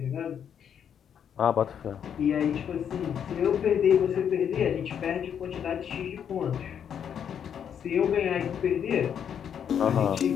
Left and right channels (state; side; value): quieter; right; 8.4 dB